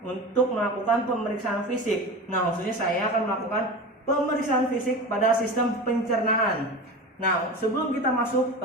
untuk melakukan pemeriksaan fisik. Nah, khususnya saya akan melakukan pemeriksaan fisik pada sistem pencernaan. Nah, sebelum kita masuk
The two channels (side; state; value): both; normal; correlation 0.29